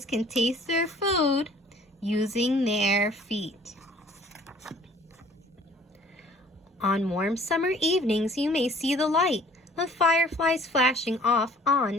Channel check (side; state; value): both; normal; correlation 0.54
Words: can taste their food using their feet. On warm summer evenings, you may see the light of fireflies flashing off on